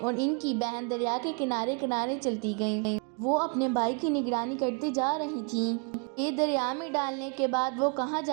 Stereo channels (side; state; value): left; quieter; 35.6 dB